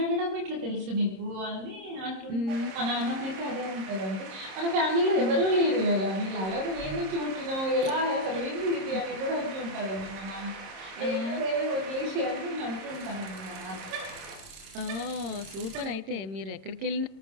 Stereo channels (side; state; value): left; late; 26 ms